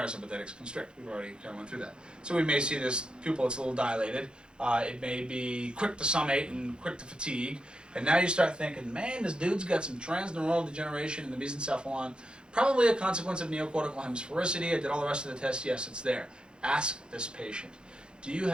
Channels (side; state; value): left; late; 0.050 ms